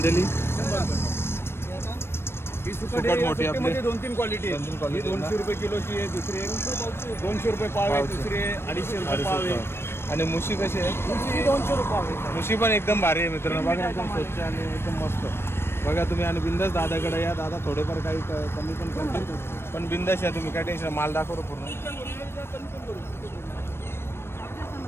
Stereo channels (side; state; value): right; late; 0.12 ms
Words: ही सुकट मोठी आपली 2-3 क्वालिटी आहे. 2-3 क्वालिटी. 200 रुपये किलोची आहे, दुसरी आहे 200 रुपये पाव आहे, दुसरी आहे 250 रुपये पाव आहे. आणि मुशी कशी आहे? दुसरी 200 रुपये पाव आहे. मुशी पण एकदम भारी आहे मित्रांनो. बघा एकदम स्वच्छ आणि एकदम मस्त. बघा तुम्ही आणि बिंदास दादाकडे या. दादा थोडेफार काही कमी पण करतील. पण बिंदास या तुम्ही, काय टेन्शन. माल दाखवतो पूर्ण.